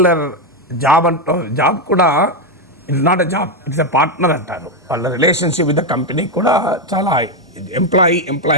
జాబ్ కూడా it's not a job, it's a partner అంటారు. వాళ్ళ రిలేషన్షిప్ విత్ ద కంపెనీ కూడా చాలా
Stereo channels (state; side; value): normal; both; correlation 0.06